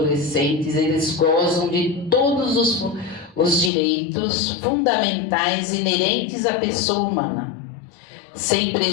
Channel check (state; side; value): drops out; right; at 3.7 s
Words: eles gozam de todos os direitos fundamentais inerentes à pessoa humana, sem